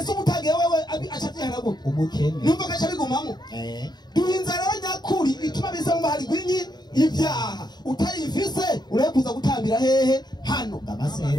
umutagiye wewe acabyihana gute umukene numva gacha bigumamo duhinzara nyakuri ituma bisa bahari gwinyi ibyaha utayivise urekuza gutambira hehe hano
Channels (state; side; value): late; right; 0.20 ms